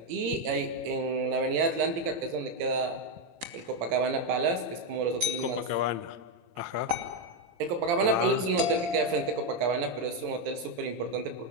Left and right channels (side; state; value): left; late; 18 ms